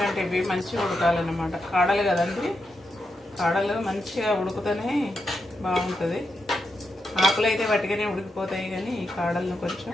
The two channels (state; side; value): normal; both; correlation 0.85